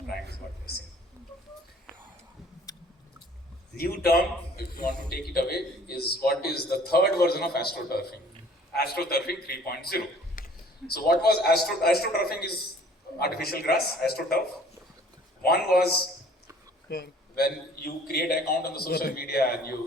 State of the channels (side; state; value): both; normal; correlation 0.53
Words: crime is what we're seeing. New term, if you want to take it away, is what is the third version of astroturfing. Astroturfing 3.0. So what was astroturfing is artificial grass, astroturf. One was when you create an account on the social media and